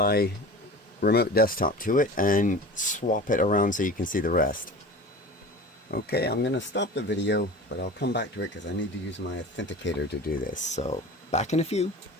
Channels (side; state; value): both; normal; correlation 0.36